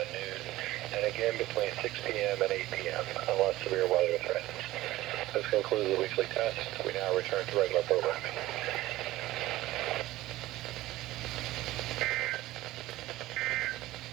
and noon, and again between 6 p.m. and 8 p.m. unless severe weather threatens. This concludes the weekly test. We now return to regular programming.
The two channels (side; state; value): left; quieter; 16.8 dB